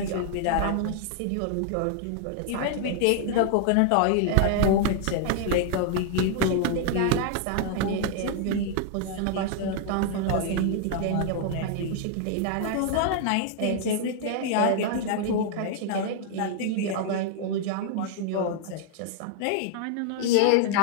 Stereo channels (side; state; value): both; different; correlation 0.00